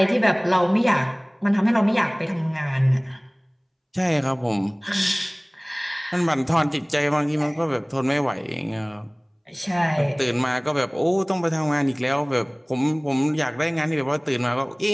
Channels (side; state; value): both; identical; correlation 1.00